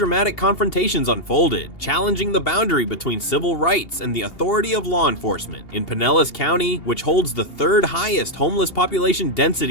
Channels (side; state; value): right; late; 2.8 ms